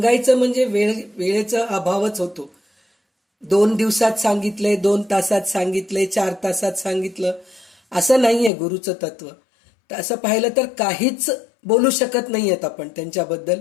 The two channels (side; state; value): right; drops out; at 8.5 s